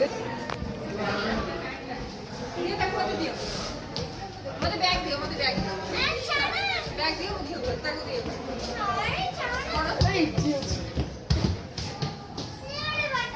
ये तक मत दियो मत बैग दियो बैग दियो तक दियो कौन सही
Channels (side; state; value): both; identical; correlation 1.00